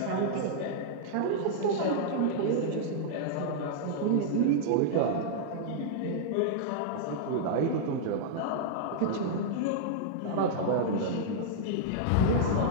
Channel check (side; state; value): both; different; correlation -0.02